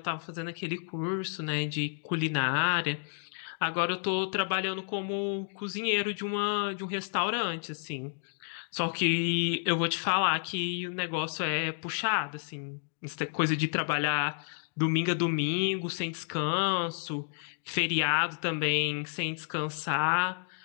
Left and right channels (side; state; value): right; silent; digital silence